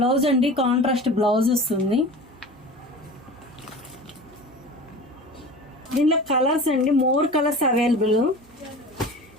అండి, కాంట్రాస్ట్ బ్లౌజ్ వస్తుంది. దీనిలో కలర్స్ అండి, మోర్ కలర్స్ అవైలబుల్.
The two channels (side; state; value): right; noise; hum, 28 dB below the sound